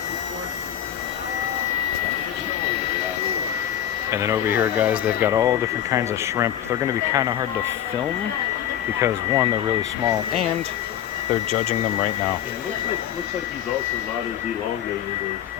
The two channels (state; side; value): quieter; right; 10.6 dB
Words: And then over here, guys, they've got all different kinds of shrimp. They're going to be kind of hard to film because, one, they're really small, and they're judging them right now. It looks like he's also not as elongated as